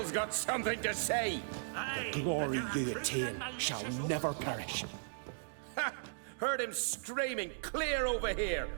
got something to say. The glory you attain shall never perish. Ha! Heard him screaming clear over here.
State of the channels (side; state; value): left; silent; digital silence